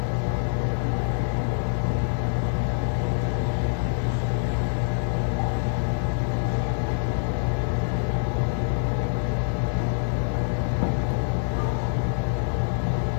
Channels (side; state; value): right; silent; digital silence